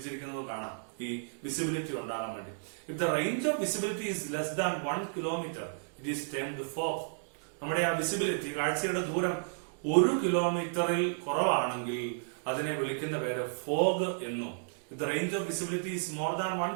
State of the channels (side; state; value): left; silent; digital silence